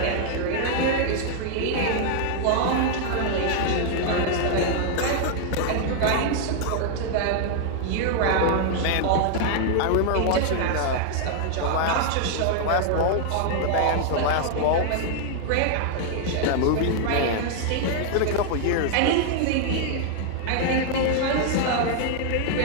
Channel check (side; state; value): both; different; correlation 0.00